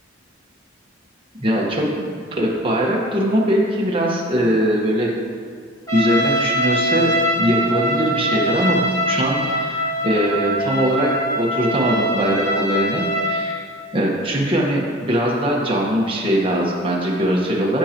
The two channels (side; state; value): both; normal; correlation 0.39